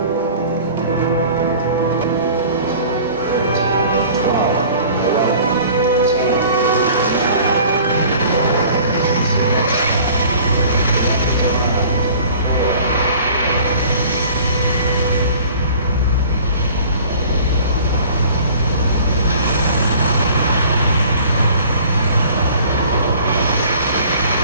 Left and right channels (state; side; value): inverted; both; correlation -0.48